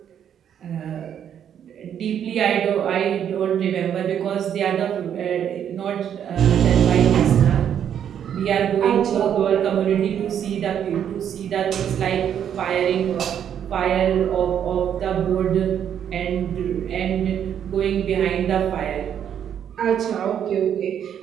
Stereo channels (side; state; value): left; quieter; 9.1 dB